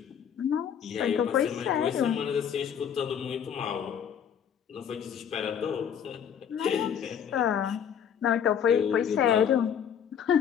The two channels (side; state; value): right; quieter; 8.3 dB